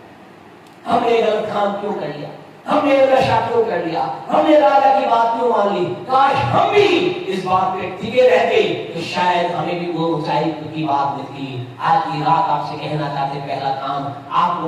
हमने गलत काम क्यों कर लिया, हमने नशा क्यों कर लिया, हमने राजा की बात क्यों मान ली। काश हम भी इस बात पे टिके रहते तो शायद हमें भी वो ऊंचाई की बात मिलती। आज की रात आपसे कहना चाहते, पहला काम आपको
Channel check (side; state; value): both; identical; correlation 1.00